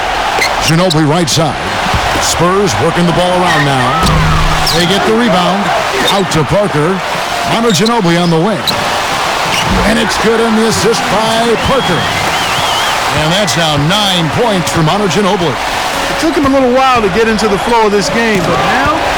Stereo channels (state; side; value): identical; both; correlation 1.00